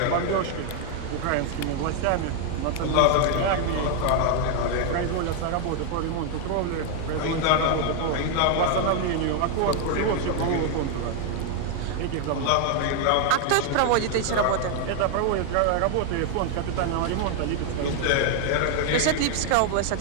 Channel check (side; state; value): both; different; correlation 0.00